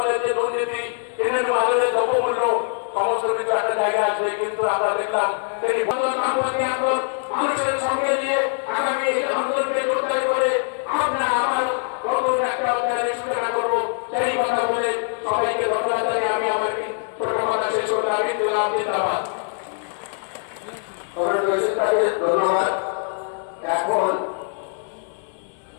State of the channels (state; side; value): silent; right; 64 dB below the other